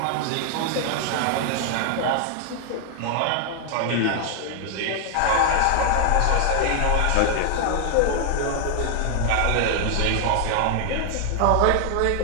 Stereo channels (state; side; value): different; both; correlation 0.00